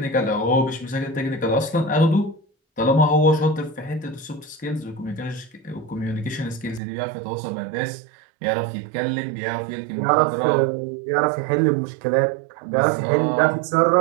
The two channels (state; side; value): drops out; left; at 6.8 s